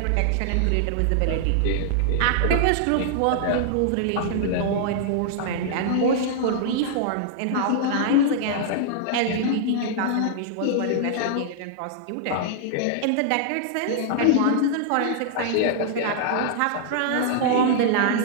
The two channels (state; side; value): different; both; correlation -0.01